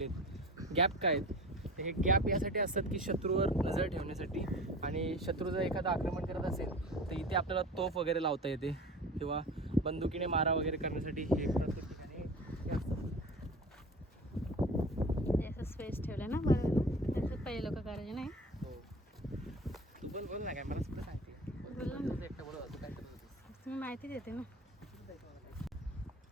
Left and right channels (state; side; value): normal; both; correlation 0.37